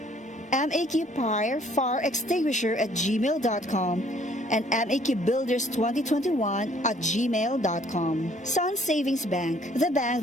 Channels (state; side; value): normal; both; correlation 0.61